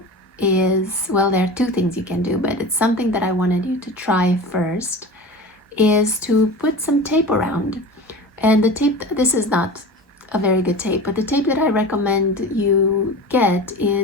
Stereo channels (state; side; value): normal; both; correlation 0.32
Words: is, well, there are two things you can do, but it's something that I wanted you to try first, is to put some tape around. And the tape, this is not a very good tape, but the tape that I recommend you get